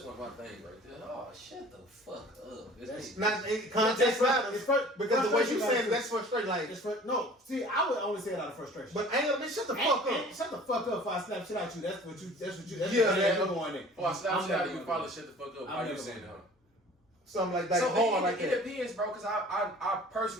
my things right there. Oh, shut the fuck up. It's not context matters because the way you saying that's frustrating. Like no, see, I would only say it out of frustration. But ain't bitch, shut the fuck up. Shut the fuck up before I slap shit out you. That's what you. Going in. Before I slap shit out you, probably shut the fuck up. Why you saying that? Something like that. So hard like it depends, bro. Because I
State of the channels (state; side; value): normal; both; correlation 0.47